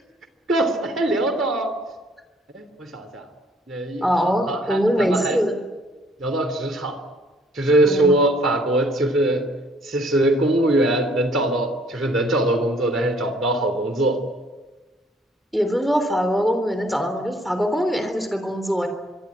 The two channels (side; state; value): both; normal; correlation 0.62